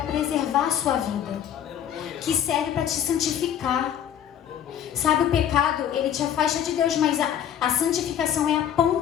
preservar a sua vida. Que serve para te santificar. Sabe, o pecado, ele te afasta de Deus, mas a santificação é a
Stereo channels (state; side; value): quieter; right; 9.7 dB